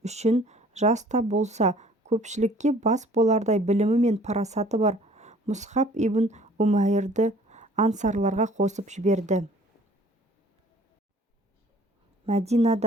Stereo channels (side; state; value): both; normal; correlation 0.53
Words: үшін жаста болса көпшілікке бас болардай білімі мен парасаты бар Мұсхаб ибн Умайрды ансарларға қосып жіберді.